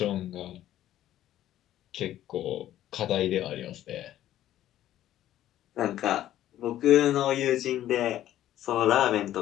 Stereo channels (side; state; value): right; quieter; 12.8 dB